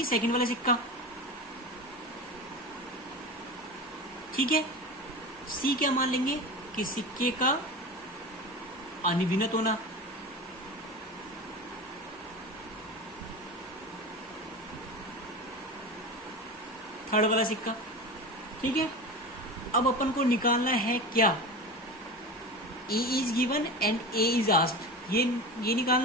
सेकंड वाला सिक्का, ठीक है। सी क्या मान लेंगे कि सिक्के का अनिविनत होना, थर्ड वाला सिक्का, ठीक है। अब अपन को निकालना है क्या, A is given and A is asked, ये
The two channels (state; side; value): normal; both; correlation 0.28